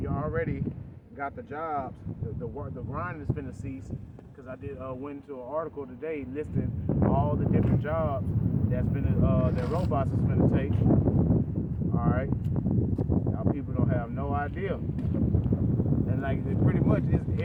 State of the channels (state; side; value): identical; both; correlation 1.00